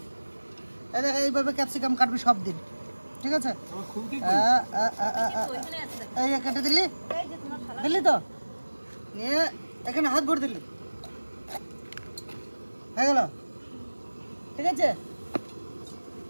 এই দেখ, এইভাবে ক্যাপসিকাম কাটবি সব দিন, ঠিক আছে? আমার খুঁটি ওইখানে আছে। এই যে কেটে দিলি, এই যে তোমার শালা। দিলি তো নিয়ে এখানে হাত ভরে দিলি, হয়ে গেল, ঠিক আছে?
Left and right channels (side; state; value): both; inverted; correlation -1.00